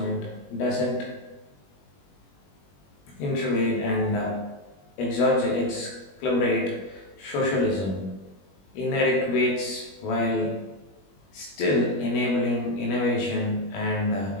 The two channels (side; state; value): right; late; 21 ms